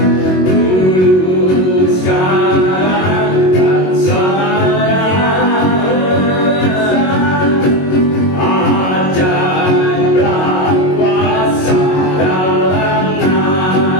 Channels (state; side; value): late; right; 22 ms